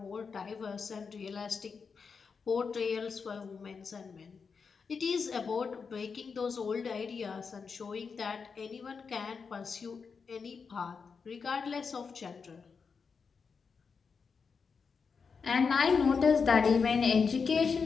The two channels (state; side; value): quieter; right; 5.5 dB